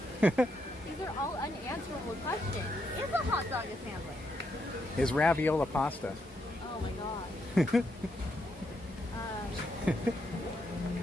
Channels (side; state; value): both; normal; correlation 0.79